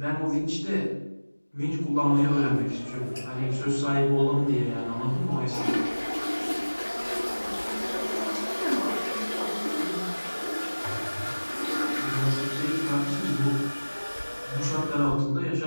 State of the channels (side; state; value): both; inverted; correlation -1.00